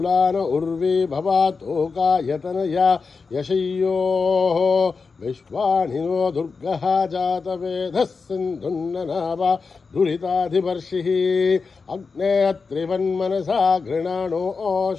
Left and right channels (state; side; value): quieter; right; 4.8 dB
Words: उर्वी भवातोकायतनया यशय्योः विश्वानिनो दुर्गः जातवेदः सिन्धुन्ननावा दुरिताधिवर्षिः अग्ने त्रिवन्मनसा